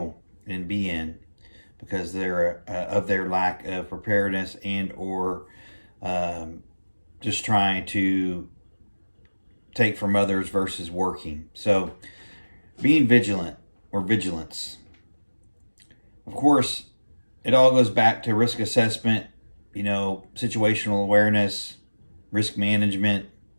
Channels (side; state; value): both; inverted; correlation -1.00